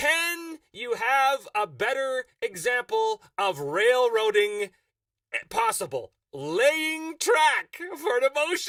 you have a better example of railroading possible? Laying track for an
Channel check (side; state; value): both; identical; correlation 1.00